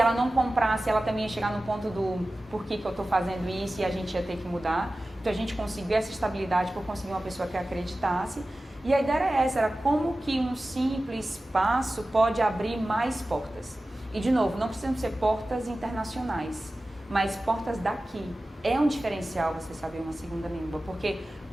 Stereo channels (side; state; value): both; normal; correlation 0.95